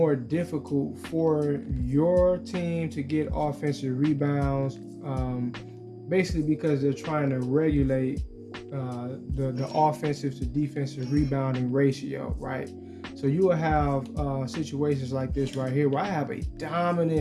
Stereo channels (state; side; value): identical; both; correlation 1.00